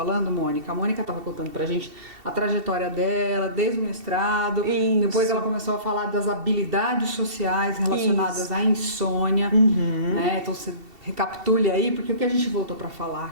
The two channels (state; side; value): late; left; 2.7 ms